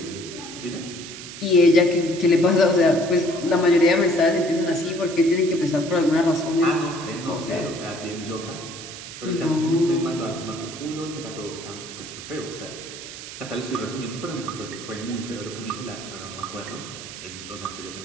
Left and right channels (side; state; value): right; noise; hiss, 12 dB below the sound